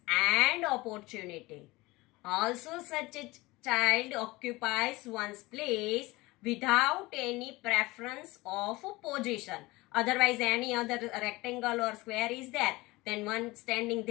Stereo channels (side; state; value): right; quieter; 21.1 dB